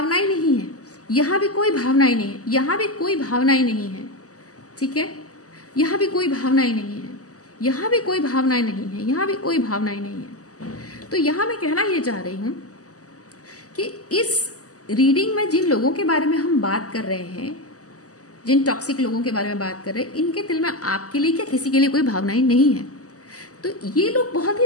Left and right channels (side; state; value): right; late; 0.66 ms